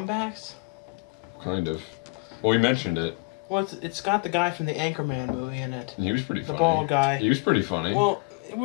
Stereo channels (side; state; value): right; quieter; 29.8 dB